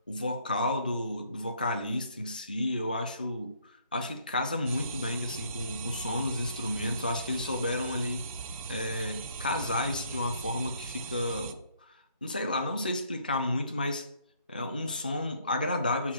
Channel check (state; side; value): inverted; both; correlation -0.65